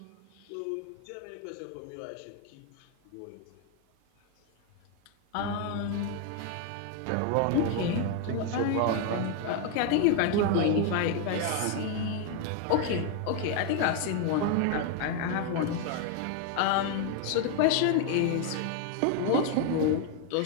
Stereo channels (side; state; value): both; different; correlation 0.00